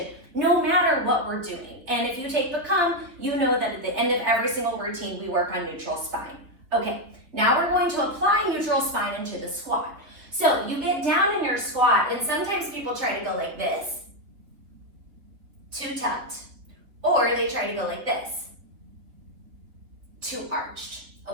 no matter what we're doing. And if you take Become, you know that at the end of every single routine, we work on neutral spine. Okay, now we're going to apply neutral spine into the squat. So you get down in your squat, and sometimes people try to go like this, too tucked, or they try to go like this, too arched,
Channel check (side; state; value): left; late; 3.6 ms